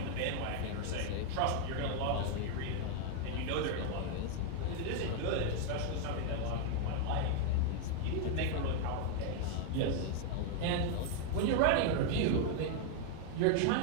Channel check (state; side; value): different; both; correlation 0.00